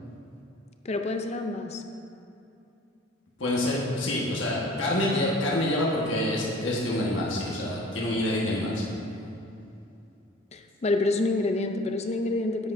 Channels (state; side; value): normal; both; correlation 0.47